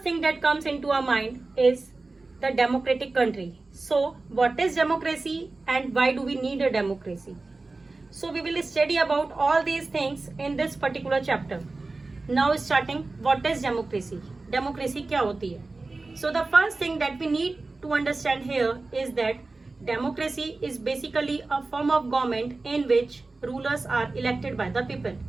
thing that comes into our mind is the democratic country. So what is democracy and why do we need a democracy? So we will study about all these things in this particular chapter. Now starting, what is democracy? Democracy क्या होती है? So the first thing that we need to understand here is that democracy is basically a form of government in which rulers are elected by the people.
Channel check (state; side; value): quieter; left; 3.5 dB